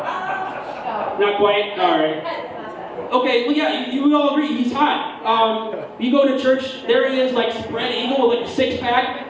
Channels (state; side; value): identical; both; correlation 1.00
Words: Not quite. All right. Okay. Well, yeah. You all agree he's hot. You go to church, there he is, like spread eagle with like a